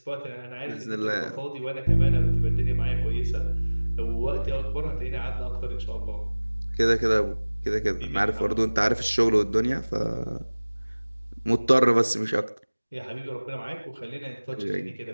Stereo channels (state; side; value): inverted; both; correlation -1.00